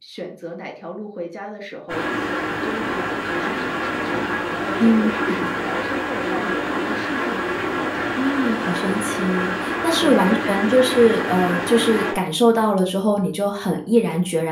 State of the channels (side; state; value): both; identical; correlation 1.00